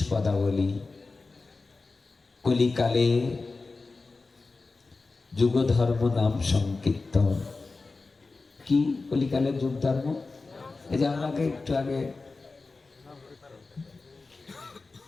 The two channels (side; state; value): right; quieter; 3.8 dB